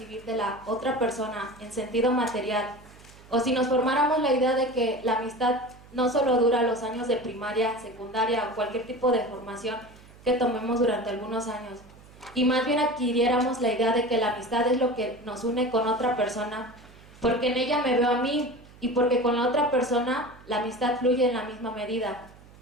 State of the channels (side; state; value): right; noise; hum, 23 dB below the sound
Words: de la otra persona en sentido material, o si nos formáramos la idea de que la amistad no solo dura los años de primaria, secundaria o cualquier tipo de formación que tomemos durante algunos años, y más bien adquiriéramos la idea de que la amistad es lo que nos une con otra persona, porque en ella me veo a mí, y porque con la otra persona la amistad fluye en la misma medida,